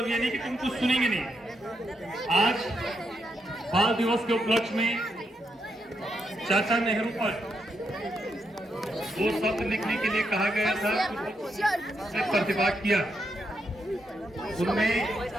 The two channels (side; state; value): both; normal; correlation 0.81